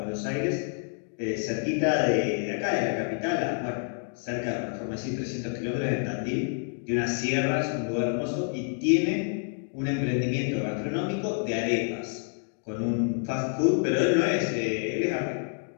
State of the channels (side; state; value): right; silent; 59 dB below the other